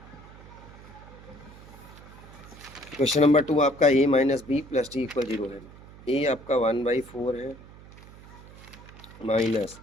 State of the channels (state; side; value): noise; right; hum, 19 dB below the sound